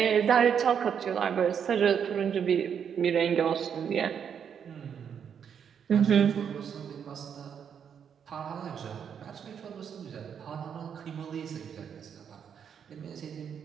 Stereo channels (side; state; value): left; quieter; 7.8 dB